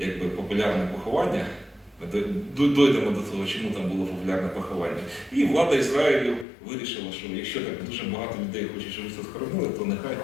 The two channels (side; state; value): right; drops out; at 6.5 s